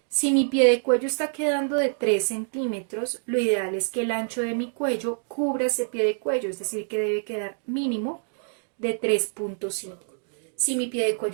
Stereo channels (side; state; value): left; silent; digital silence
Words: si mi pie de cuello está quedando de 3 centímetros, lo ideal es que el ancho de mi cuello cubra ese pie de cuello, es decir, que debe quedar mínimo de 3,5. Si mi pie de